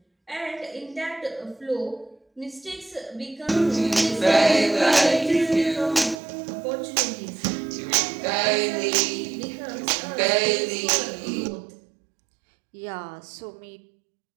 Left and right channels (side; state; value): left; drops out; at 6.2 s